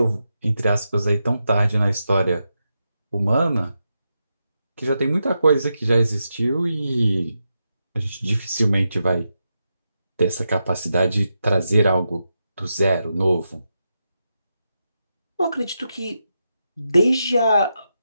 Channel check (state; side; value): inverted; both; correlation -0.87